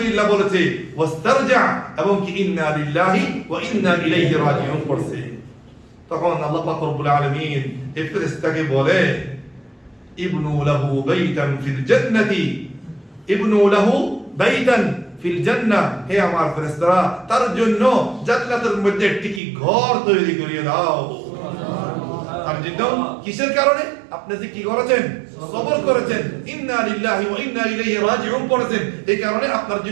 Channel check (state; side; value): drops out; left; at 19.4 s